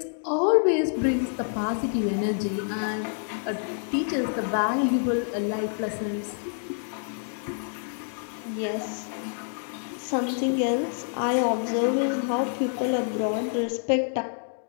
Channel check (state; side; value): silent; right; 60 dB below the other